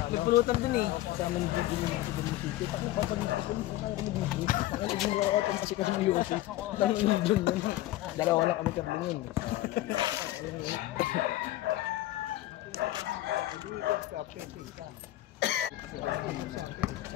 pulutan dun eh. Kasama nung dun yung sito. Tapos papagin sa pulutan, kaya kami mag-group. Kaya naging workout kasi kasi ng UFC. Dahil yung dun yun. Dalawa lang kami kabling yun.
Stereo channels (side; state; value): right; quieter; 15.6 dB